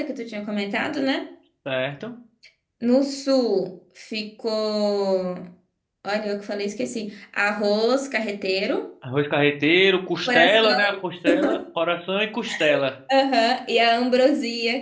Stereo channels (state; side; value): identical; both; correlation 1.00